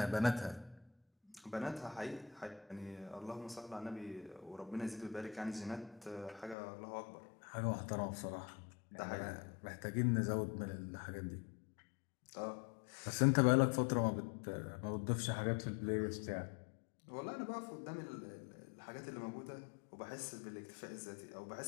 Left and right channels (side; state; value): right; drops out; at 6.6 s